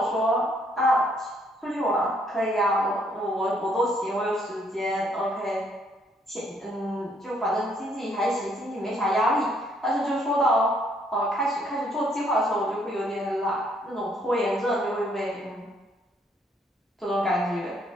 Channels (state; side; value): normal; both; correlation 0.68